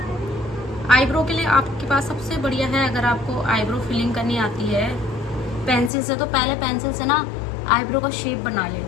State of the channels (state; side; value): drops out; right; at 5.9 s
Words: आईब्रो के लिए आपके पास सबसे बढ़िया है, अगर आपको आईब्रो फिलिंग करनी आती है पेंसिल से, तो पहले पेंसिल से ना आईब्रो का शेप बना ले,